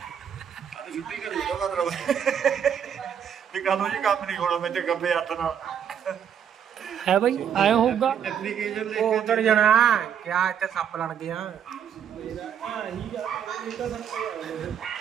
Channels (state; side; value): quieter; left; 8.5 dB